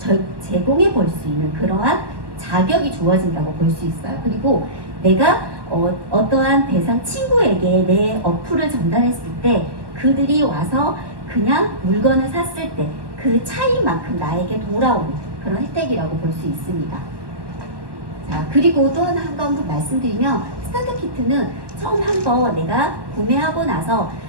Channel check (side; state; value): left; late; 1.2 ms